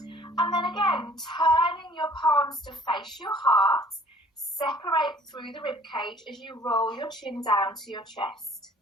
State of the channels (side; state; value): both; normal; correlation 0.54